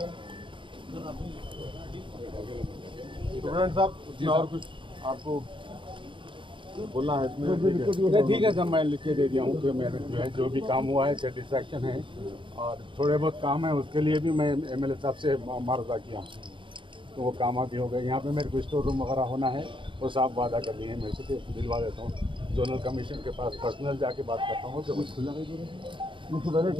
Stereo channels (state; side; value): late; left; 0.24 ms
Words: स्टूडेंट साहब और कुछ आपको बोलना है इसमें? ठीक है सर, मैं लिख के दे दिया हूँ कि मेरे जो है जो भी काम हुआ है सेटिस्फैक्शन है, और थोड़े बहुत काम है उसके लिए भी मैं एमएलए साहब से मार्जा किया, तो वो काम भी हो गए। यहाँ पे मेरे को स्टोर रूम वगैरह होना है, वो साफ वादा कर लिए हैं, मैं से दिलवा देता हूँ। जोनल कमीशन के पास पर्सनल जाके बात करता हूँ कि कुछ खुला नहीं